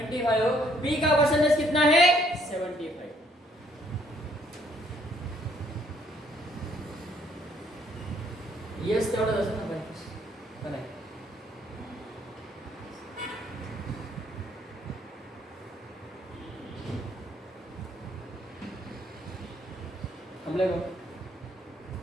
पी का परसेंटेज कितना है? 75। यस तेवढंच असेल ना भाई, का नाही? थांबले का?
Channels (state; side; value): normal; both; correlation 0.66